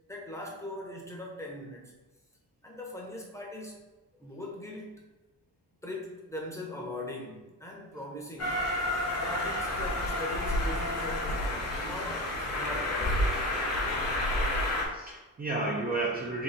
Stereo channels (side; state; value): both; normal; correlation 0.25